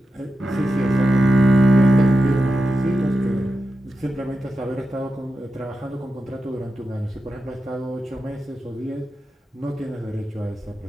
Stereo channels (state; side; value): normal; both; correlation 0.91